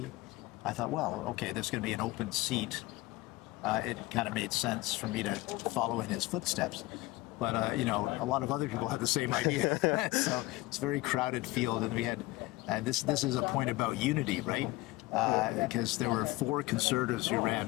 I thought, well, okay, there's going to be an open seat. It kind of made sense for me to follow in his footsteps. But, a lot of other people had the same idea. So it's a very crowded field. And this is a point about unity, right? Because there were 4 Conservatives who ran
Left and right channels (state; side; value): quieter; right; 20.1 dB